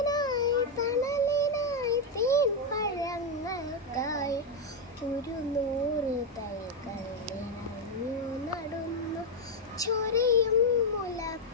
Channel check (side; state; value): both; normal; correlation 0.03